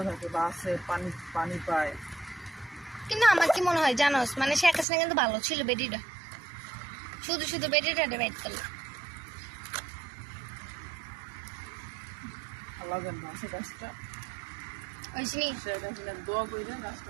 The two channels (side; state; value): left; drops out; at 4.9 s